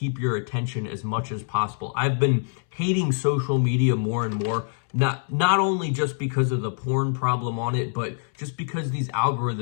your attention as much as possible. I've been hating social media more and more, not only just because of the porn problem on it, but just because these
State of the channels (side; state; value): right; silent; 62 dB below the other